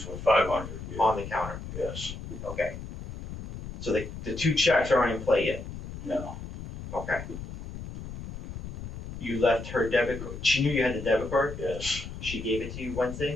but 500. Yeah. On the counter? Yes. Okay. So the 2 checks aren't in play yet? No. Okay. You left her debit card. She knew you had the debit card? Yes. She gave it to you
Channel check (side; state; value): left; noise; rumble, 10 dB below the sound